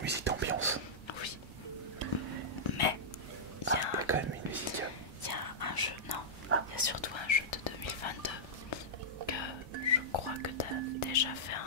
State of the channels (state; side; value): normal; both; correlation -0.12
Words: musiques d'ambiance. Oui. Mais il y a quand même une musique. Il y a un jeu, non, il y a surtout un jeu de 2022 que je crois que tu as déjà fait